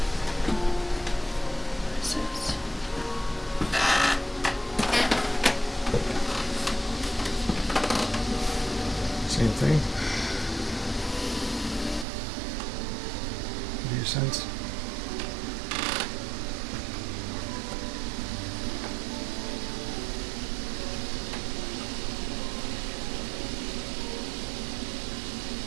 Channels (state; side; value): drops out; left; at 12.1 s